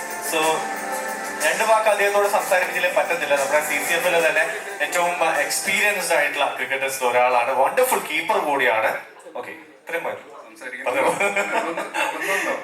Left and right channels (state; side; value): identical; both; correlation 1.00